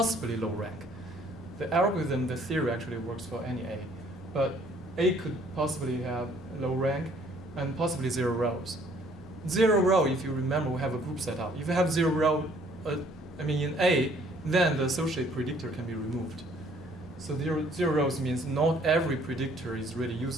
low rank. The algorithm, the theory actually works for any A. But A could possibly have low rank and possibly 0 rows. 0 row, if you remember, we have a group set up. If you have 0 row in A, then the associated predictor can be removed. So 0 rows means not every predictor is really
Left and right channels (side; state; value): both; normal; correlation 0.60